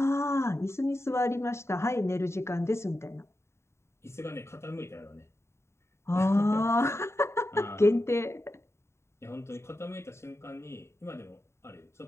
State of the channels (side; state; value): right; late; 0.13 ms